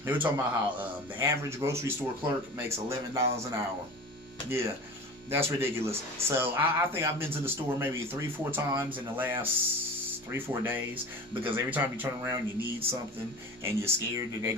They were talking about how the average grocery store clerk makes $11 an hour. Yeah. That's ridiculous. So I think I've been to the store maybe 3-4 times in the last 3-4 days because every time you turn around you need something and you're scared that they're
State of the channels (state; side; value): normal; both; correlation 0.35